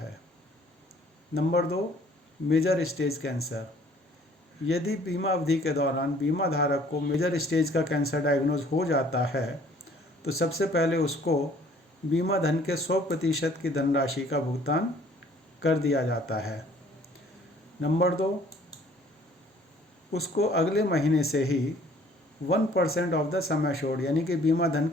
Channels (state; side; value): normal; both; correlation 0.56